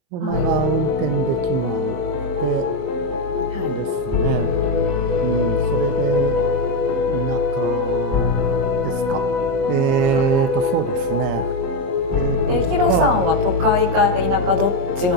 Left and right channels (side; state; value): left; late; 22 ms